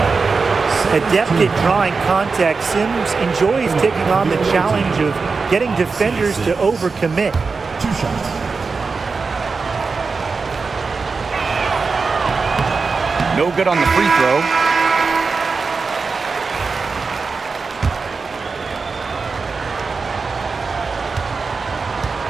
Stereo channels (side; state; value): left; quieter; 4.6 dB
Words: Adept at drawing contact, Sims enjoys taking on the challenge of getting defenders to overcommit. 2 shots. No good on the free throw.